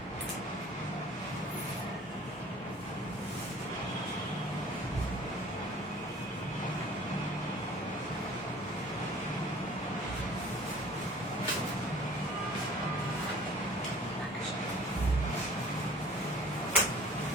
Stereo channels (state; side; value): normal; both; correlation 0.48